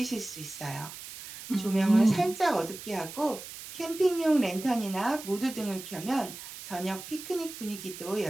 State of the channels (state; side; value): noise; right; hiss, 12 dB below the sound